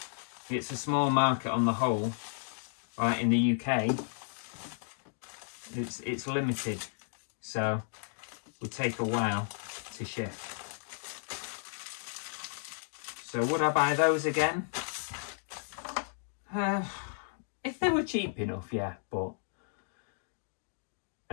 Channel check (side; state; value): right; silent; digital silence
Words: it's a small market on the whole. Right, in the UK, it's limited, so it would take a while to ship. So would I buy those again? If they were cheap enough, yeah, but